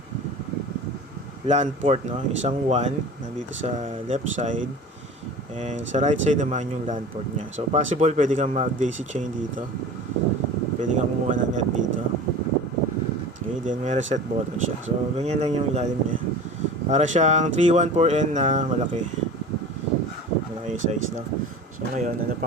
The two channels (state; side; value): normal; both; correlation 0.37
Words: LAN port, no? Isang WAN nandito sa left side, and sa right side naman yung LAN port niya. So possible pwede kang mag daisy chain dito, pwede kang kumuha ng net dito. Okay, then may reset button siya. So ganyan lang yung ilalim niya. Para siyang 314N na malaki size, no? So ngayon, ano